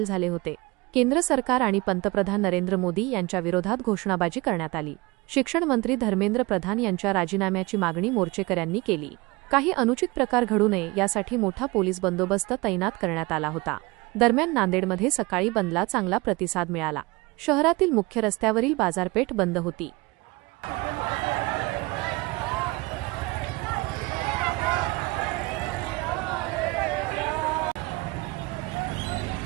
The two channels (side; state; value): left; quieter; 23.8 dB